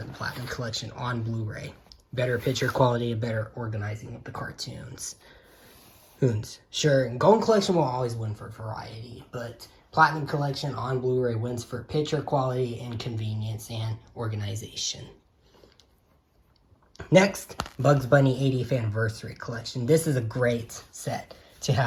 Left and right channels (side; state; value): both; identical; correlation 1.00